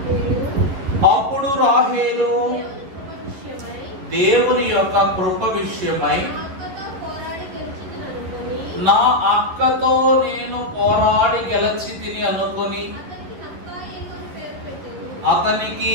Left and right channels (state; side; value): late; left; 11 ms